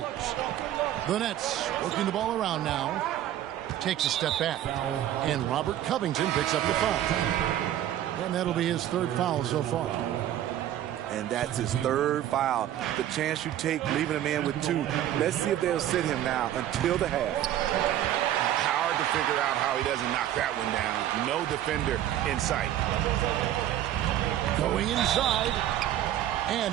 The Nets working the ball around now. Takes a step back. And Robert Covington picks up the foul. And that'll be his third foul so far. And that's his third foul. The chance you take leaving him in with 2. Let's see if they'll sit him now until the half. Hard to figure out how he doesn't knock that one down. No defender in sight. Going inside. And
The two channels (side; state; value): left; quieter; 12.1 dB